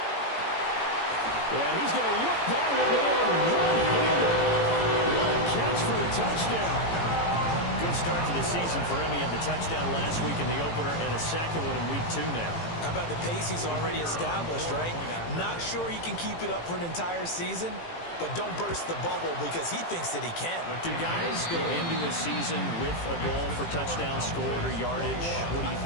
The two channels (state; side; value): late; right; 18 ms